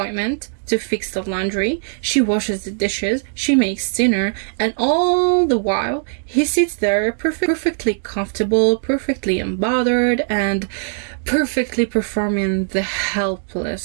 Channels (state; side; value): silent; left; digital silence